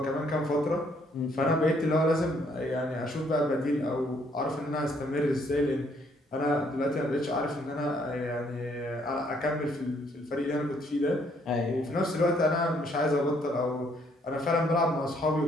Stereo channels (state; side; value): normal; both; correlation 0.67